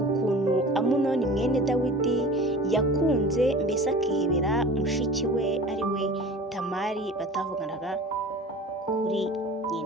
ukuntu Amunoni mwene Dawidi yakunze mbese akihebera mushiki we ari we Tamari batavuganaga kuri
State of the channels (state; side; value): normal; both; correlation 0.40